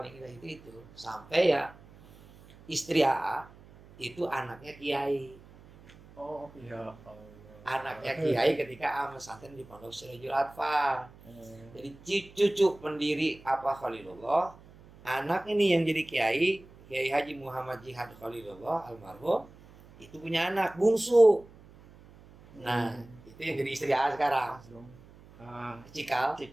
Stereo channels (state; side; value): noise; right; hum, 23 dB below the sound